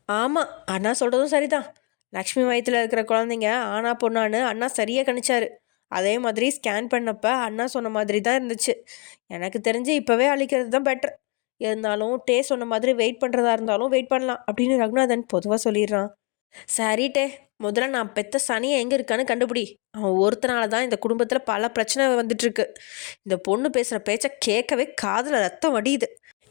ஆமாம், அண்ணா சொல்கிறதும் சரிதான். லக்ஷ்மி வயிற்றில் இருக்கிற குழந்தைங்க ஆனா பொண்ணான்னு அண்ணா சரியாக கணிச்சாரு. அதே மாதிரி ஸ்கேன் பண்ணப்ப அண்ணா சொன்ன மாதிரி தான் இருந்துச்சு. எனக்கு தெரிஞ்சு இப்போவே அழிக்கிறது தான் பெட்டர். இருந்தாலும் டே சொன்ன மாதிரி வெயிட் பண்ணுறதா இருந்தாலும் வெயிட் பண்ணலாம் அப்படின்னு ரகுநாதன் பொதுவாக சொல்லிடுறான். சரி டே, முதல்ல நான் பெத்த சனியை எங்கே இருக்கான்னு கண்டுபிடி. அவன் ஒருத்தனால தான் இந்த குடும்பத்தில் பல பிரச்சனை வந்துட்டுருக்கு. இந்த பொண்ணு பேசுகிற பேச்சை கேட்கவே காதில் ரத்தம் வடியுது.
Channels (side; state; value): right; quieter; 32.4 dB